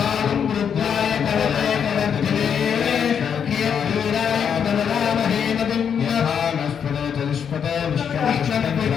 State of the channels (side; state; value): right; quieter; 7.6 dB